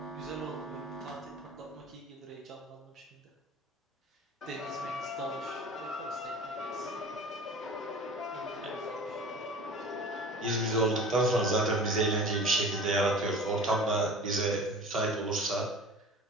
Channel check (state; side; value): normal; both; correlation 0.40